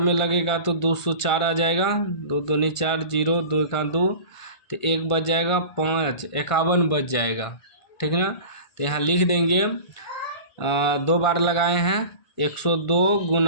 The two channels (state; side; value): late; right; 1.5 ms